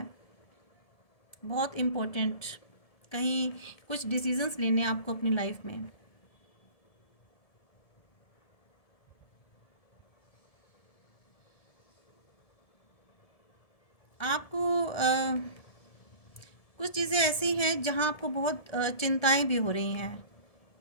बहुत इम्पोर्टेंट कहीं कुछ डिसीजंस लेने आपको अपनी लाइफ में। आपको कुछ चीज़ें ऐसी हैं जहाँ आपको बहुत चिंताएं भी हो रही हैं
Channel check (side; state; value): right; late; 1.7 ms